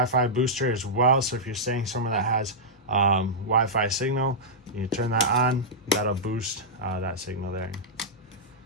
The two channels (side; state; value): both; normal; correlation -0.10